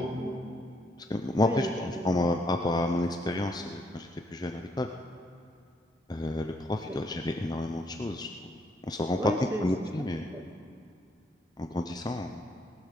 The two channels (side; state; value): both; normal; correlation 0.71